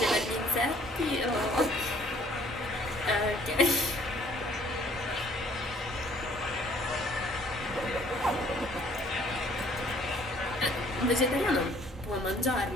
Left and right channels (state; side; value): normal; both; correlation 0.59